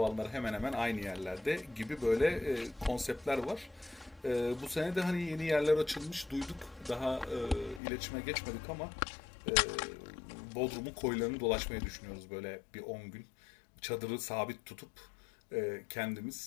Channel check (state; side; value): drops out; right; at 7.8 s